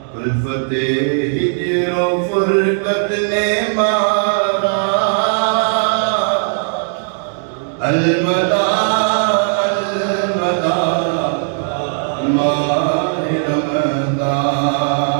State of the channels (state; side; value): silent; left; digital silence